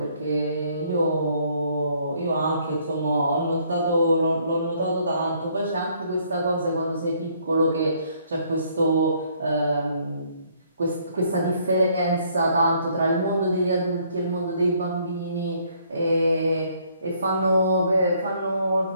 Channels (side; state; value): both; inverted; correlation -0.65